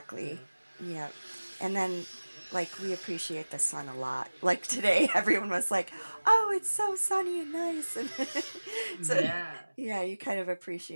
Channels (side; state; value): both; inverted; correlation -1.00